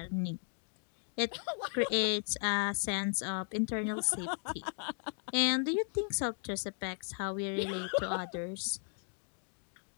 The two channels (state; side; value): silent; right; 54 dB below the other